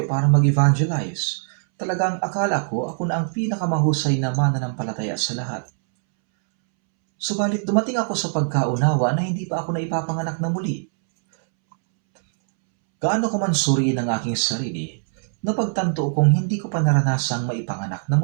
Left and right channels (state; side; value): silent; left; 64 dB below the other